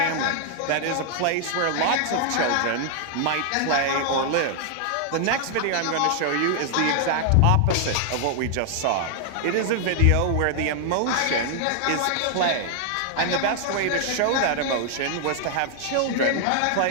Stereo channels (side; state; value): both; different; correlation 0.00